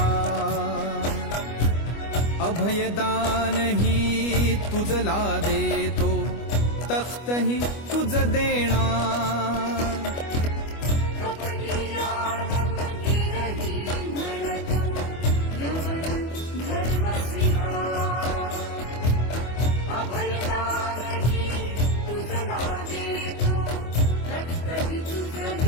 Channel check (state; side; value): late; right; 25 ms